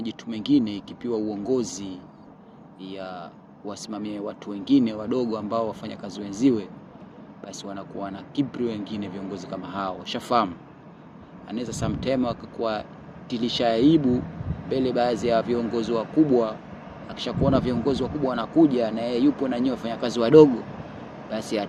mengine ikipiwa uongozi ya wasimamie watu wengine wadogo ambao wafanya kazi wenziwe, basi wanakuwa na kibri wengine viongozi kama hao. Shafamu anaweza sometime wakakuwa tilisha aibu mbele baadhi ya viongozi wakubwa. Akishakuona viongozi wakubwa wanakuja na yeye yupo na nyinyi wafanyakazi wadogo, basi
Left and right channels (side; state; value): both; identical; correlation 1.00